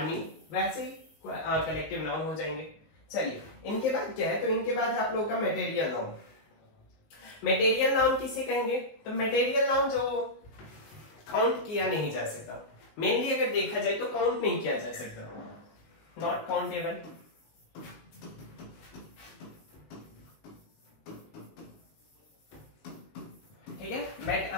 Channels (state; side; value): late; right; 19 ms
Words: वैसे ही कलेक्टिव नाउन हो जाएंगे। चलिए इनके बाद क्या है, तो इनके बाद आप लोगों का मटेरियल नाउन। मटेरियल नाउन किसे कहेंगे, तो मटेरियल नाउन जो काउंट किया नहीं जा सकता, मेनली अगर देखा जाए तो काउंट नहीं किया जा सकता, नॉट काउंटेबल।